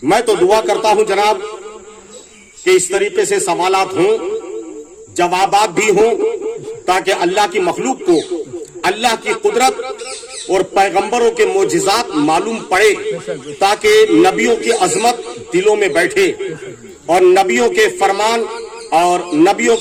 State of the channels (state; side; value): identical; both; correlation 1.00